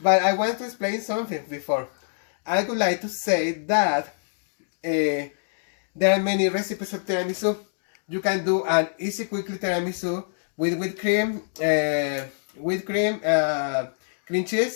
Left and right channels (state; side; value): silent; right; digital silence